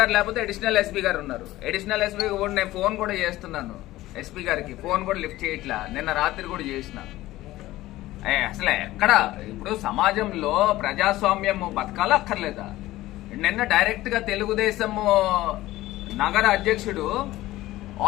లేకపోతే అడిషనల్ ఎస్పీ గారు ఉన్నారు. అడిషనల్ ఎస్పీ కూడా నేను ఫోన్ కూడా చేస్తున్నాను ఎస్పీ గారికి, ఫోన్ కూడా లిఫ్ట్ చేయట్లా. నిన్న రాత్రి కూడా చేసిన. అసలు ఎక్కడ ఇప్పుడు సమాజంలో ప్రజాస్వామ్యం బతకాలా అక్కర్లేదా? నిన్న డైరెక్ట్ గా తెలుగుదేశం నగర అధ్యక్షుడు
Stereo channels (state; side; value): quieter; right; 16.6 dB